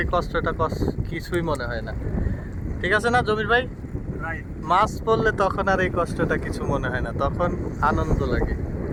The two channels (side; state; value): both; identical; correlation 1.00